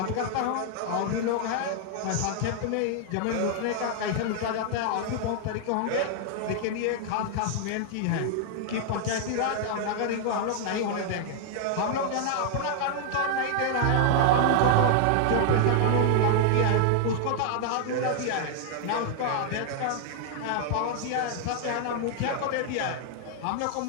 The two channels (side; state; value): both; different; correlation 0.00